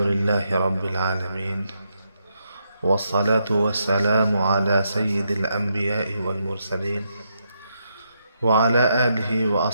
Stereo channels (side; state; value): both; inverted; correlation -0.80